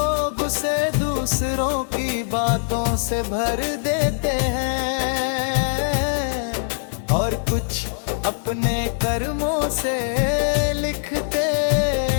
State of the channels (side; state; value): right; silent; 60 dB below the other